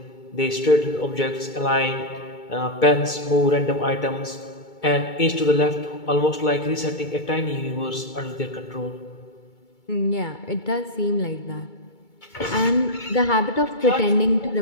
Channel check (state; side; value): late; right; 2.2 ms